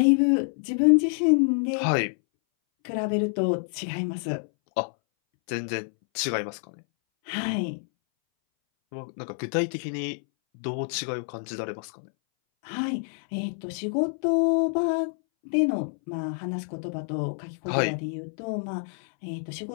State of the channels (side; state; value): right; silent; 60 dB below the other